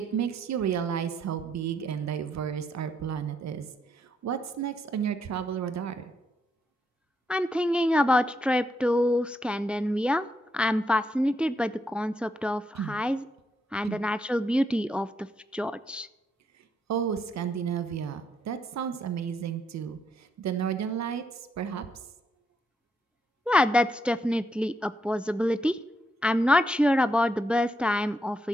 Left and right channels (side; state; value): both; normal; correlation 0.78